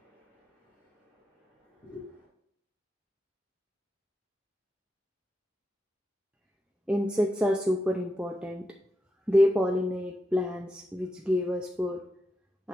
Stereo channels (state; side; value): normal; both; correlation 0.87